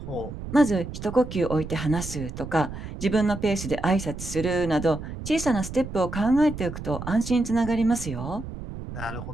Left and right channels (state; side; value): noise; right; rumble, 9 dB below the sound